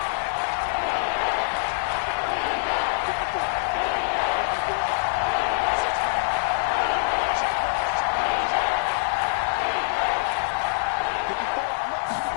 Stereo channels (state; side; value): silent; right; digital silence